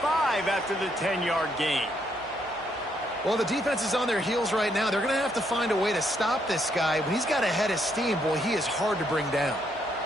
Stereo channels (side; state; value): both; normal; correlation 0.74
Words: after the 10-yard gain. Well, the defense is on their heels right now. They're going to have to find a way to stop this guy. When he's got a head of steam, boy, he is hard to bring down.